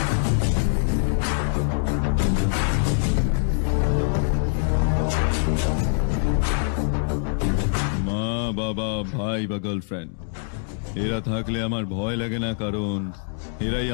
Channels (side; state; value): right; silent; digital silence